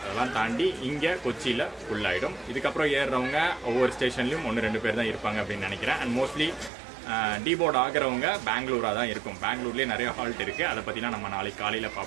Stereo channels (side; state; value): left; drops out; at 6.7 s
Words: அதெல்லாம் தாண்டி இங்கே கொச்சியில் ஃபுல் ஆகிடும். இதுக்கப்புறம் ஏறுறவங்க ஒவ்வொரு ஸ்டேஷன்லையும் 1-2 பேர் தான் இருப்பாங்க அப்படின்னு நினைக்கிறேன். அண்ட் மோஸ்ட்லி டீபோர்ட் ஆகிறவங்க பெங்களூராக தான் இருக்கும். பெங்களூர்லேயே நிறைய ஹால்ட் இருக்குது. அதை பற்றினா நம்ம நாளைக்கு காலையில்